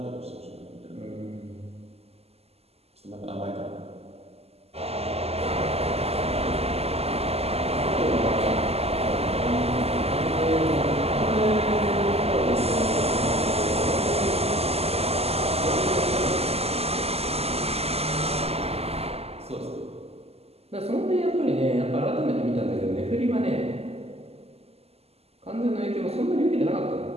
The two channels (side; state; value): left; late; 0.29 ms